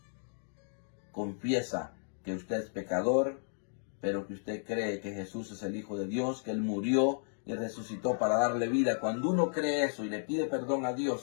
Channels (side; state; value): right; silent; digital silence